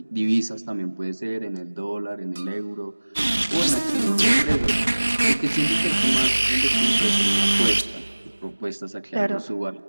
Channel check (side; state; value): both; inverted; correlation -1.00